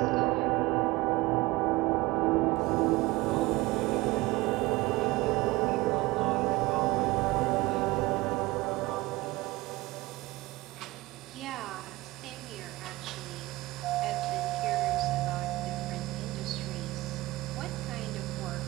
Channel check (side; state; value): left; quieter; 20.2 dB